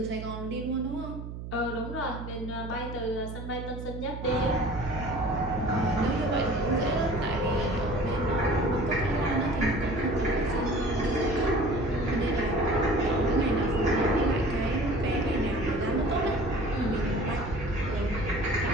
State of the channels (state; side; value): noise; right; hum, 9 dB below the sound